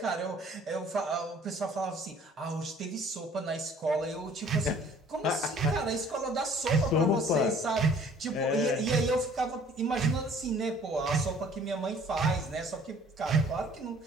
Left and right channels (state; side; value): normal; both; correlation 0.54